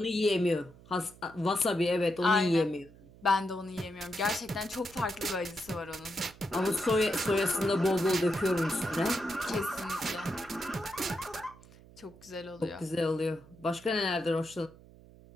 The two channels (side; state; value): right; noise; hum, 22 dB below the sound